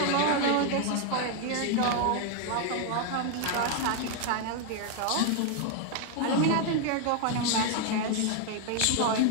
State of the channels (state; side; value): different; both; correlation 0.00